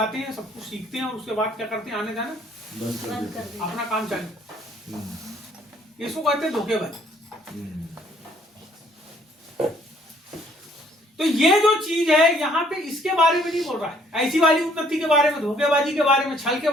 हैं, सब कुछ सीखते हैं, और उसके बाद क्या करते हैं, आने जाना अपना काम चालू। इसको कहते हैं धोखेबाजी। तो ये जो चीज है यहाँ पे, इसके बारे में नहीं बोल रहा है, ऐसी वाली उन्नति के बारे में, धोखेबाजी के बारे में, छल के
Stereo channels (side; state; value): both; normal; correlation 0.63